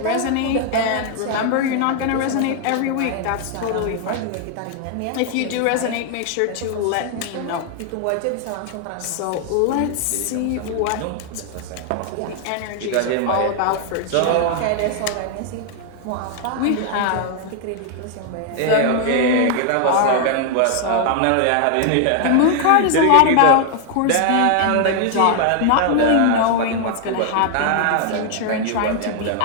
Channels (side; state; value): both; different; correlation 0.00